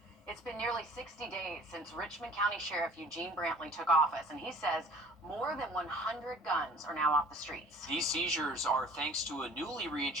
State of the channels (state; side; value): normal; both; correlation 0.49